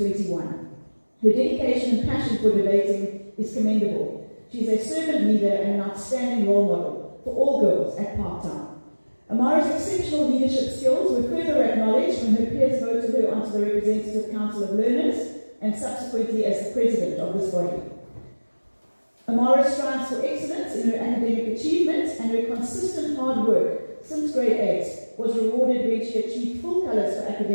Her dedication and passion for debating is commendable. She is a servant leader and an outstanding role model for all girls at Parktown. Amara's exceptional leadership skills were further acknowledged when her peers voted her onto the Representative Council of Learners and subsequently as the president of this body. Amara strives for excellence in her academic achievements, and her consistent hard work since grade 8 was rewarded when she achieved full colours for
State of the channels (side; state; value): both; inverted; correlation -1.00